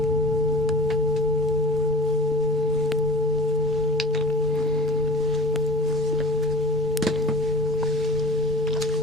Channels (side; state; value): both; normal; correlation 0.39